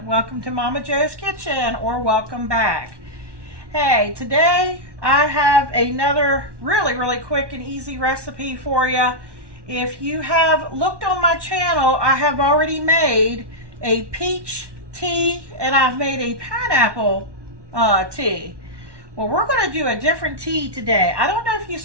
welcome to Momma Jo's Kitchen, or welcome back. Hey, today I have another really quick and easy recipe for you. If you have looked on my channel, I have already made a peach tea and I've made a pineapple tea. Well, we're going to do a different tea today. I don't know if you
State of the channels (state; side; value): late; left; 1.1 ms